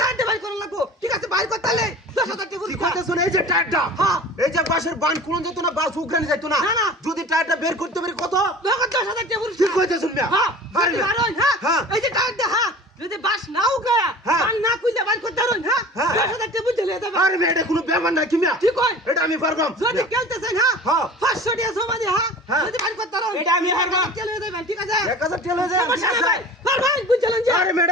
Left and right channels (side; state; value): both; normal; correlation 0.40